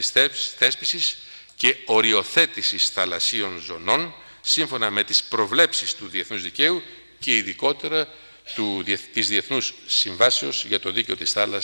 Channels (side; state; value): both; inverted; correlation -1.00